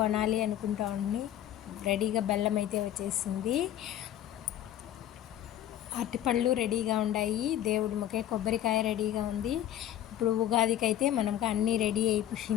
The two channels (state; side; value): quieter; right; 11.6 dB